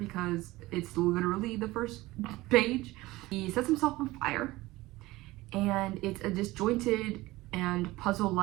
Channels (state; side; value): quieter; left; 19.1 dB